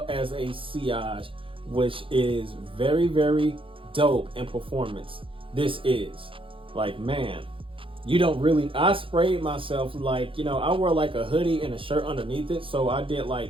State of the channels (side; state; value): left; late; 0.25 ms